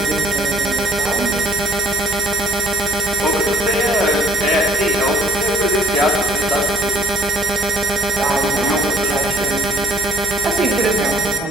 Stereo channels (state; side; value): normal; both; correlation 0.61